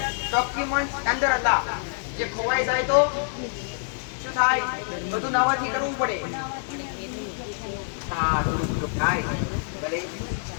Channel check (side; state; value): right; silent; 61 dB below the other